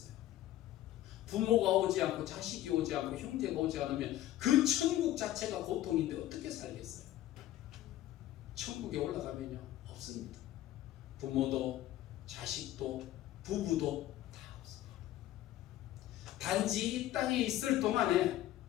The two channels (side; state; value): right; quieter; 13.9 dB